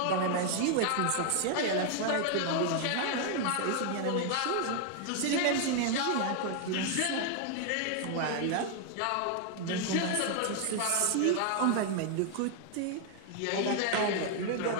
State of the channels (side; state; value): both; different; correlation 0.00